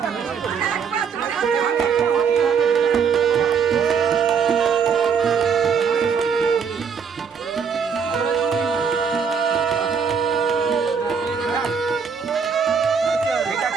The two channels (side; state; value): left; quieter; 6.4 dB